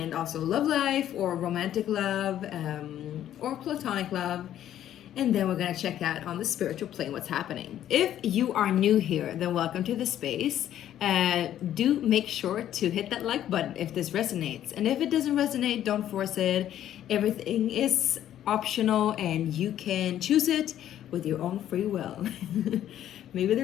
also love life or romantic love or platonic love. And then we're going to check out on the spiritual plane what's happening. If you are new here, then welcome to the space. Do make sure to hit that like button if this resonates. And if it doesn't resonate, don't force it. Everything is optional and you can choose it with your own free will. Maybe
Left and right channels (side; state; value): right; quieter; 11.4 dB